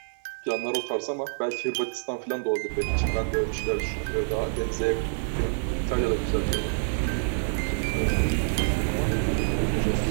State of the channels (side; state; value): left; silent; 60 dB below the other